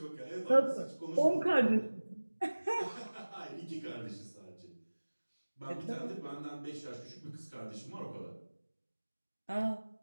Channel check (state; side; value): inverted; both; correlation -1.00